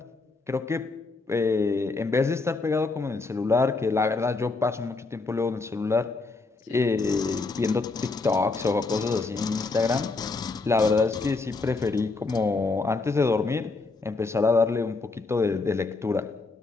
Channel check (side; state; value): right; quieter; 3.8 dB